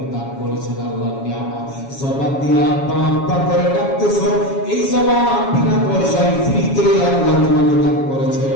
দিয়ে আব্বা আব্বা করে ডাকতেছো, এই জবান বিনা পয়সায় ফ্রিতে আল্লাহ তোমাকে দান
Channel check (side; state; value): right; late; 7.2 ms